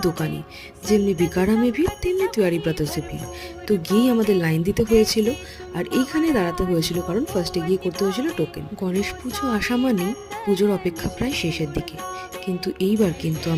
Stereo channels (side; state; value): both; identical; correlation 1.00